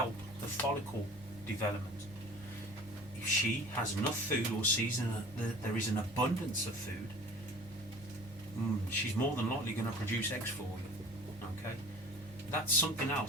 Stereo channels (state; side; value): normal; both; correlation 0.43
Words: the follicle development. If she has enough food or sees that there is an abundance of food, she's more than likely going to produce eggs for you. Okay, that's something